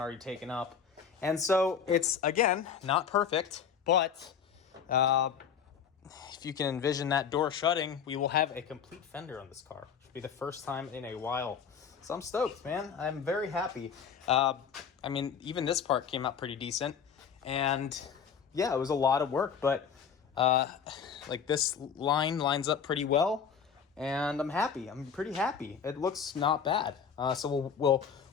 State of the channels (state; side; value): quieter; right; 7.1 dB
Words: already taken up. And so it's, again, not perfect, but if you can envision that door shutting, we will have a complete fender on this car. It'll be the first time in a while. So I'm stoked, man. I'm very happy. Even this part came out pretty decent. And yeah, it was a lot of work, but this line lines up pretty well. And I'm happy. I'm pretty happy. It looks not bad. So we'll